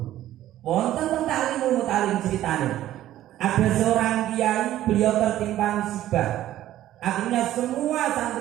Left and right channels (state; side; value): quieter; left; 13.3 dB